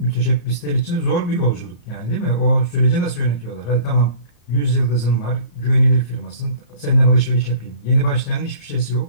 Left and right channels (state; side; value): late; right; 34 ms